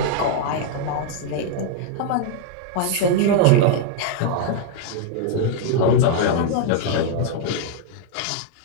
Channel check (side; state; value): both; different; correlation 0.00